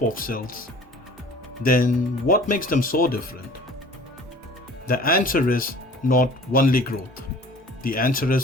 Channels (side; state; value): both; normal; correlation 0.47